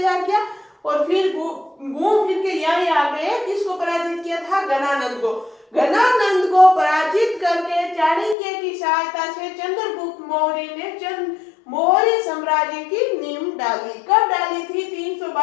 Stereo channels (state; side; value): drops out; right; at 8.3 s